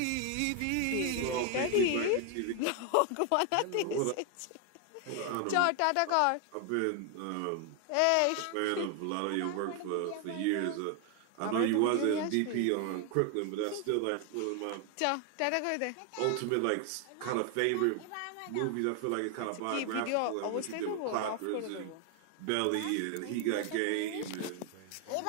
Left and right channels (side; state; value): both; different; correlation 0.01